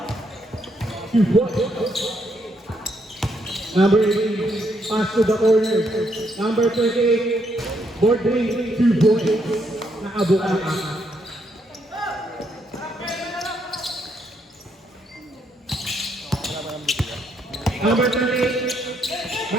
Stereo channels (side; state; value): both; normal; correlation 0.75